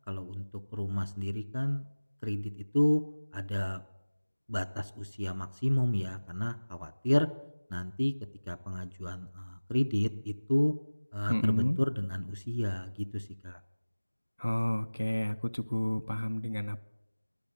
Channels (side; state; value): both; inverted; correlation -1.00